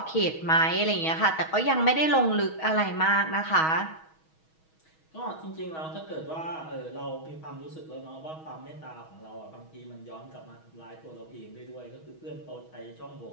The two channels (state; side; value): late; right; 6.3 ms